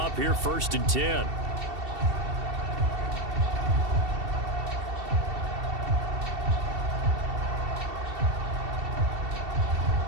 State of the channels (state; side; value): late; left; 2.7 ms